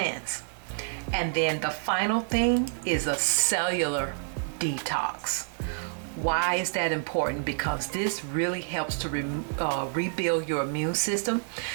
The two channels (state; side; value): silent; left; 58 dB below the other